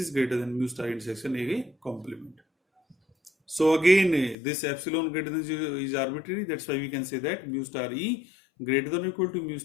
greater than mu star intersection A complement. So again, this epsilon greater than 0 is arbitrary. That's why we can say that mu star E greater than or equal to mu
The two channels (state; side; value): drops out; right; at 4.4 s